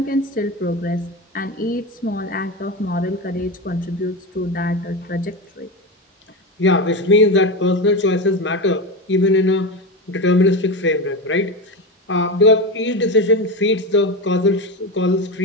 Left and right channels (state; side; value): normal; both; correlation 0.19